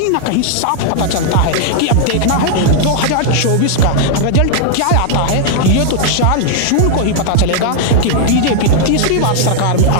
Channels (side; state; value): both; different; correlation -0.01